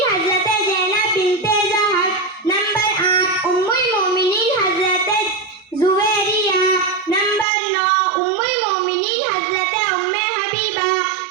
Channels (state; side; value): drops out; left; at 7.5 s